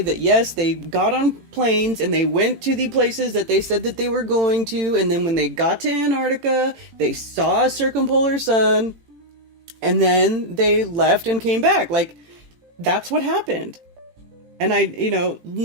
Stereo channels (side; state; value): left; late; 18 ms